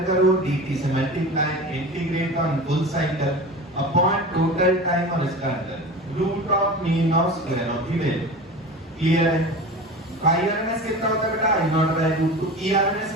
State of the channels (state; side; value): normal; both; correlation 0.33